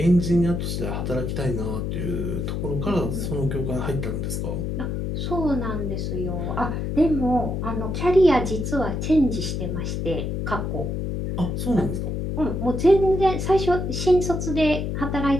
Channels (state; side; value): noise; left; hum, 2 dB below the sound